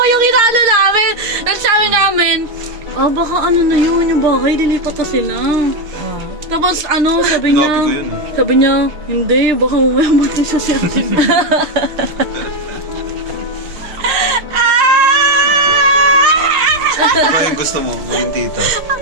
yung inaano namin. Nagsabi namin, baka ano na yun, yung bahay, lilipat na sila. Tapos ano, sabi niya, Sinabi ko yun eh. sabi niya, hindi, baka mamaya matin sa siyate. Ano ba yung gusto mo? Maging tita.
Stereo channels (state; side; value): late; left; 6.6 ms